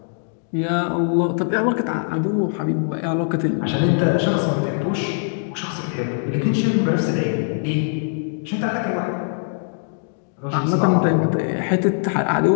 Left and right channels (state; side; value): silent; right; digital silence